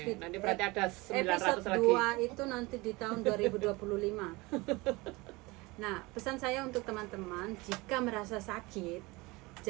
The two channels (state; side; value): quieter; left; 23.4 dB